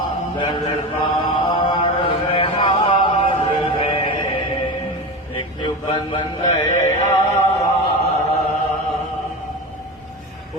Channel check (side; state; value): both; normal; correlation 0.25